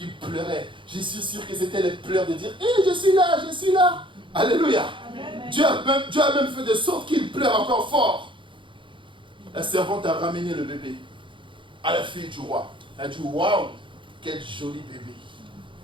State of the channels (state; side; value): late; left; 0.24 ms